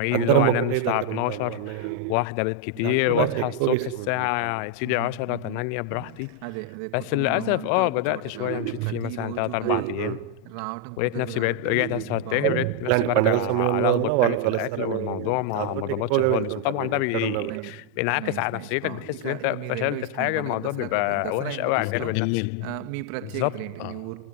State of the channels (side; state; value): both; different; correlation 0.01